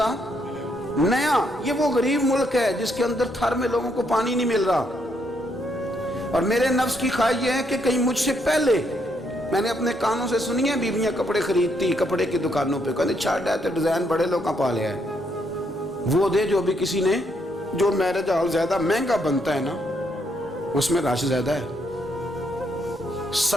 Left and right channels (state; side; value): normal; both; correlation 0.75